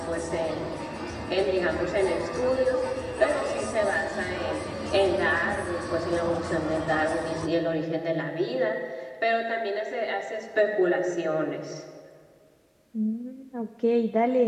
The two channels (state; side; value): identical; both; correlation 1.00